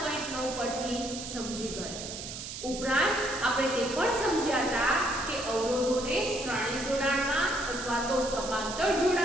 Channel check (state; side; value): noise; right; hiss, 8 dB below the sound